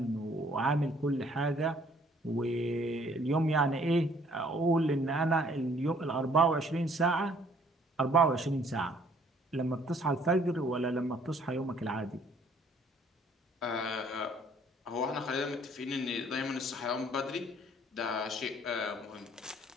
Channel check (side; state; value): both; normal; correlation 0.60